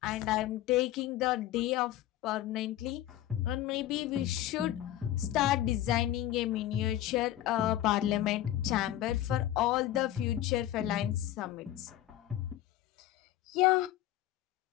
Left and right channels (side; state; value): right; quieter; 13.4 dB